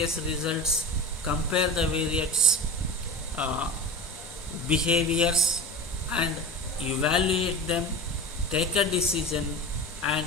results, compare the various behaviors and evaluate them, take a decision, and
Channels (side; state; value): both; normal; correlation 0.30